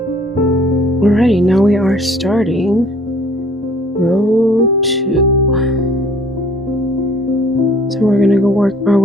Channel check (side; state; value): both; normal; correlation 0.54